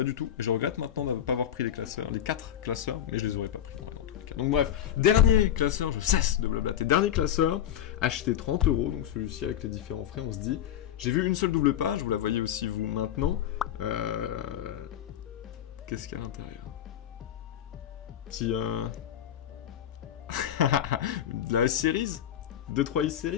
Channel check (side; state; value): right; quieter; 10.5 dB